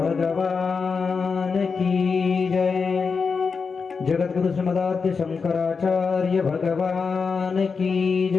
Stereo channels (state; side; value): quieter; right; 5.2 dB